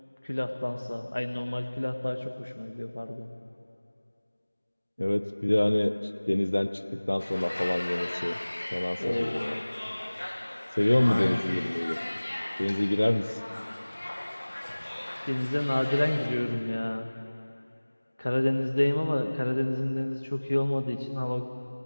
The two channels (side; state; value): both; inverted; correlation -1.00